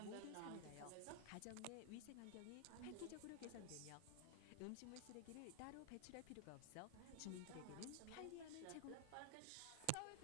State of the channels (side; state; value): both; different; correlation 0.00